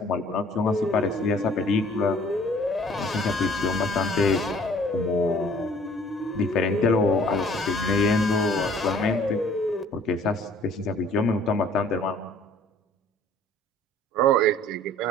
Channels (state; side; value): normal; both; correlation 0.54